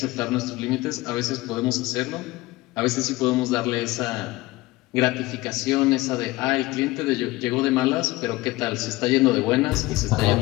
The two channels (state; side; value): quieter; right; 19.9 dB